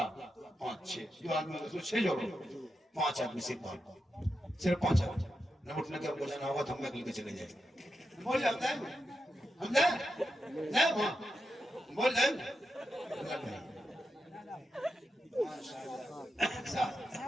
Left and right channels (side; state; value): both; normal; correlation 0.88